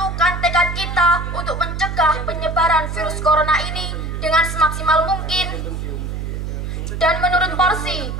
tekad kita untuk mencegah penyebaran virus corona ini dengan semaksimal mungkin dan menurut porsi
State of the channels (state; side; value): noise; right; hum, 5 dB below the sound